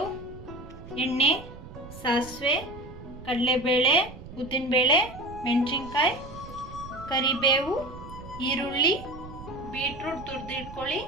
ಎಣ್ಣೆ, ಸಾಸಿವೆ, ಕಡಲೆಬೇಳೆ, ಉದ್ದಿನಬೇಳೆ, ಮೆಣಸಿನ್ಕಾಯಿ, ಕರಿಬೇವು, ಈರುಳ್ಳಿ, ಬೀಟ್ರೂಟ್ ತುರಿದಿಟ್ಕೊಳ್ಳಿ,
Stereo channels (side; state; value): right; noise; rumble, 15 dB below the sound